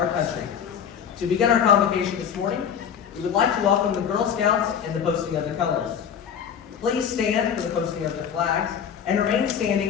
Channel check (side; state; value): right; quieter; 8.0 dB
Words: country. To begin our convocation this morning, we would like to welcome the Girl Scouts and the posting of the colors. Please stand for the posting of the flags and remain